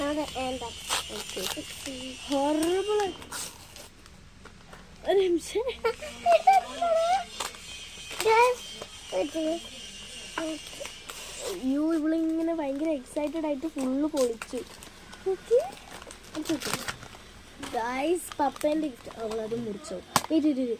ഹൊറബിൾ. ഒരു നിമിഷം, ഇവളിങ്ങനെ ഭയങ്കര എക്സൈറ്റഡ് ആയിട്ട് ഫുള്ള് പൊളിച്ചു. ഗായ്സ്, പപ്പേന്റെ ഗിഫ്റ്റ്. അവളത് മുറിച്ചോ.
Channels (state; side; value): identical; both; correlation 1.00